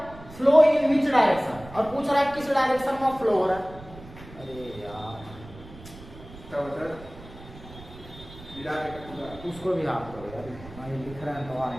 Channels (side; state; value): right; noise; rumble, 17 dB below the sound